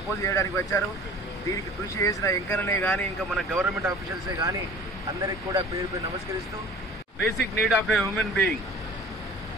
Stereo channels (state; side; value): normal; both; correlation 0.45